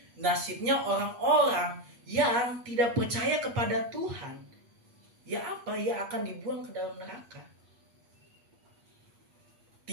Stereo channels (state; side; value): late; left; 8.3 ms